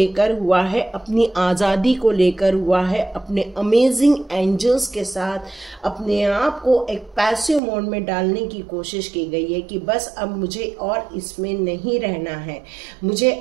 हुआ है, अपनी आज़ादी को लेकर हुआ है, अपने अमेजिंग एंजल्स के साथ अपने आप को एक पैसिव मोड में डालने की कोशिश की गई है कि बस अब मुझे और इसमें नहीं रहना है, मुझे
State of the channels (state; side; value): drops out; left; at 7.6 s